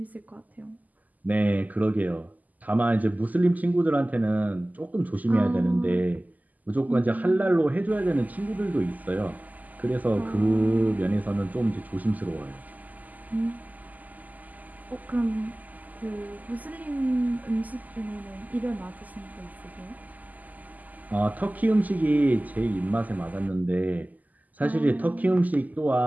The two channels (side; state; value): left; late; 0.080 ms